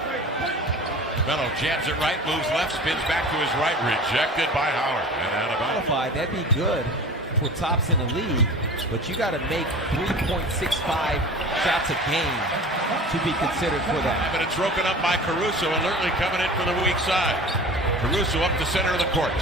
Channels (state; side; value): normal; both; correlation 0.38